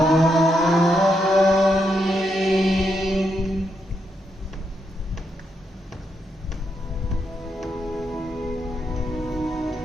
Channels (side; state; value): both; normal; correlation 0.81